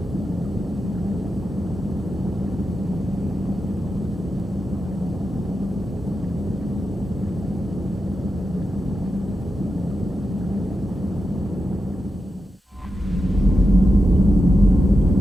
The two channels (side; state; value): both; normal; correlation 0.89